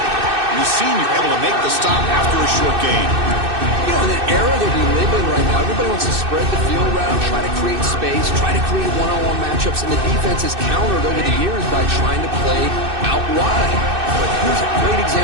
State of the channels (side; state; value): left; late; 2.6 ms